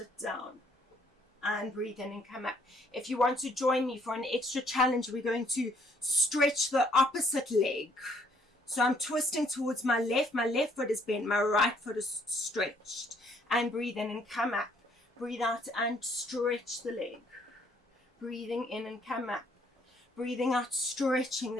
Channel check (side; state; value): both; normal; correlation 0.65